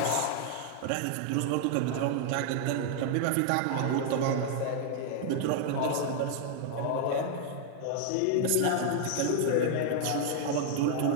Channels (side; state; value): both; different; correlation 0.00